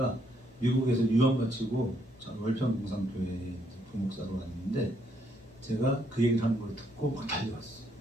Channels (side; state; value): both; normal; correlation 0.72